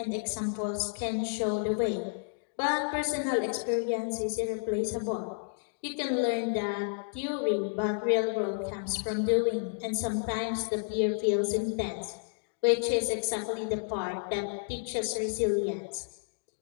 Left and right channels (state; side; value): silent; right; digital silence